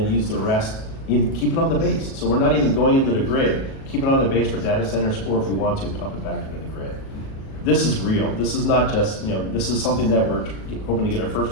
use the rest, either keep it on the base. So we're not even going into the grid, keep it on the base for data centers, or if we want to, pump it back into the grid. This is real. This is not just, this is something that we're hoping to get our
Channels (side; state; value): right; late; 37 ms